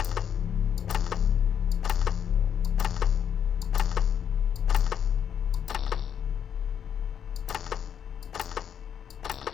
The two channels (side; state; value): right; quieter; 8.4 dB